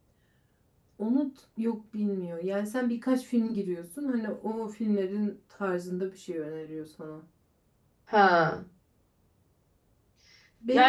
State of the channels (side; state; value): both; identical; correlation 1.00